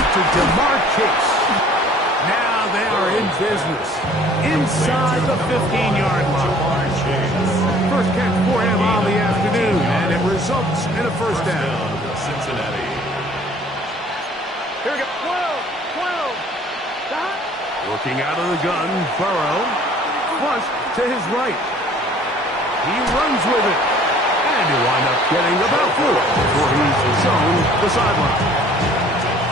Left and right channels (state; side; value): normal; both; correlation 0.54